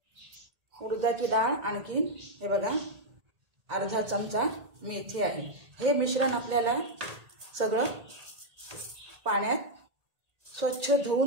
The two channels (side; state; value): left; late; 1.8 ms